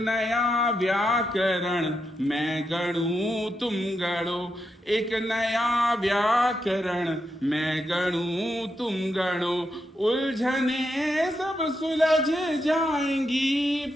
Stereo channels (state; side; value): normal; both; correlation 0.84